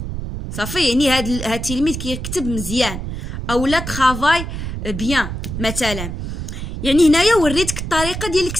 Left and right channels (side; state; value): right; noise; rumble, 6 dB below the sound